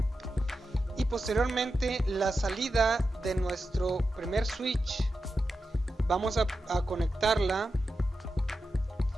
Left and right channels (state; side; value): normal; both; correlation 0.90